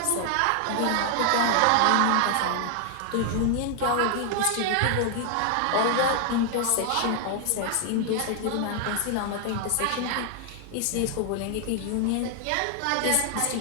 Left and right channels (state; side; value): different; both; correlation 0.00